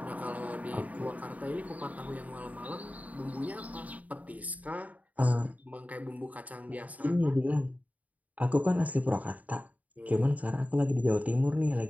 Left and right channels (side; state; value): left; late; 0.073 ms